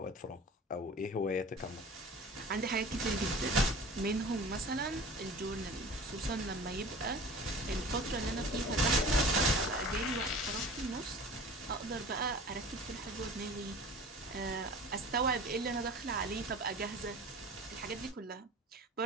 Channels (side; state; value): both; normal; correlation 0.40